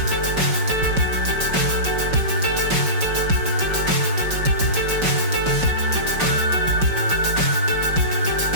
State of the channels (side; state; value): left; late; 5.3 ms